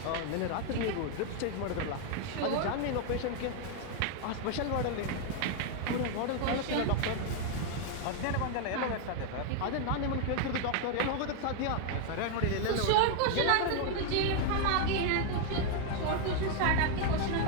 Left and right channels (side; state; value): both; different; correlation 0.00